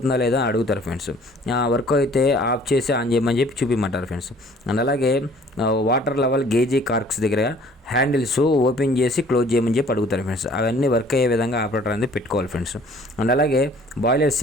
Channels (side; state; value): both; normal; correlation 0.54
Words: లేదా అడుగుతారు ఫ్రెండ్స్. వర్క్ అయితే ఆఫ్ చేసి ఆన్ చేయమని చెప్పి చూపించమంటారు ఫ్రెండ్స్. అండ్ అలాగే వాటర్ లెవెల్ గేజీ కార్క్స్ దగ్గర హ్యాండిల్స్ ఓపెన్ చేసి క్లోజ్ చేయమని చెప్పి అడుగుతారు ఫ్రెండ్స్. అవన్నీ వర్క్ అయ్యే విధంగా ఆపరేటర్ అనేది పెట్టుకోవాలి ఫ్రెండ్స్. అండ్ అలాగే బాయిలర్